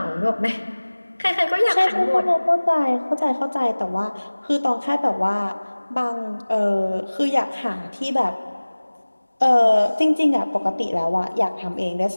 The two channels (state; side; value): inverted; both; correlation -1.00